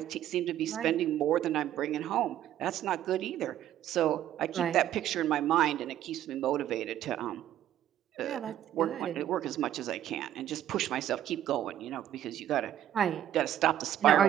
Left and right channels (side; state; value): left; quieter; 11.6 dB